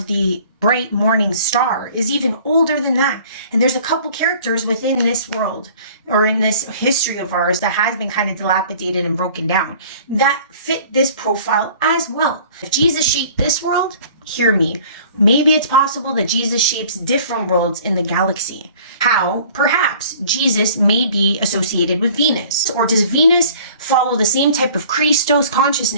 the bright morning star is even older than that. And there's a couple characters within this world or in this history of ours that has been kind of dilapidated and broken down that fit this profile as well. If Jesus shaped this world, hear me, maybe it's possible that Jesus shapes different worlds in the galaxy. How? Perhaps Jesus may be associated with Venus. Or does Venus follow the same type of Christos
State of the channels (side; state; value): both; inverted; correlation -0.50